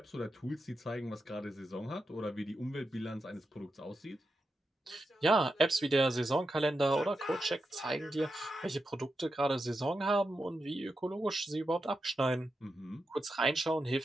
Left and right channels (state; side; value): normal; both; correlation 0.88